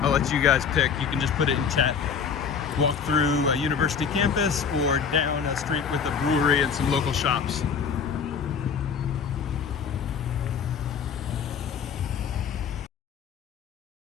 I'll let you guys pick. You can just put it in chat. Walk through a university campus or down a street with a brewery and some local shops.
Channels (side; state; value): right; quieter; 6.6 dB